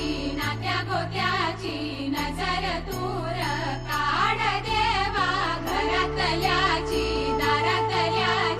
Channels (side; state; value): both; identical; correlation 1.00